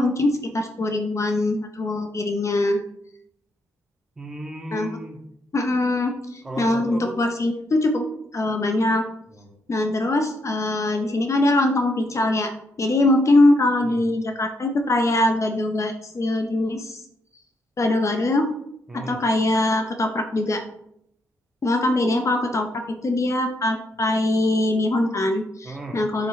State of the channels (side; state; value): both; normal; correlation 0.77